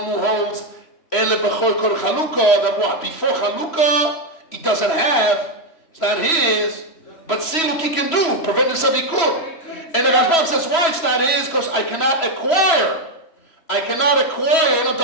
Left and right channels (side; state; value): right; late; 3.0 ms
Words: who holds Ele Bechor Kol Chalukah, that what? Before Chalukah, he doesn't have, it's not his, but siluk he can do, prevent himself he could. And the Rashbam says, why it's not his? Because I cannot acquire. The